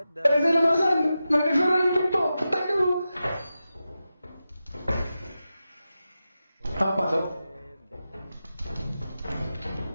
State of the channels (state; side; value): inverted; both; correlation -0.92